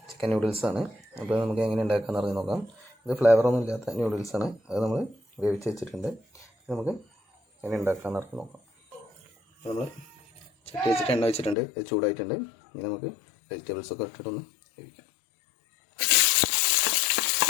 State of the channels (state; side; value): drops out; right; at 11.6 s